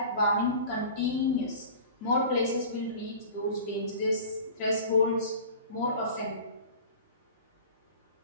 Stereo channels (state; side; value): inverted; both; correlation -0.39